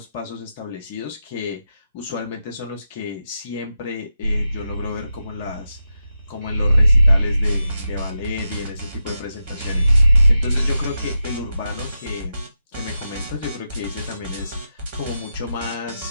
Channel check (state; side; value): inverted; both; correlation -0.87